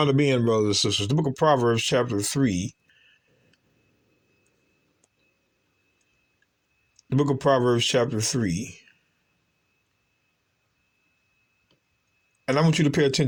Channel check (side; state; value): both; identical; correlation 1.00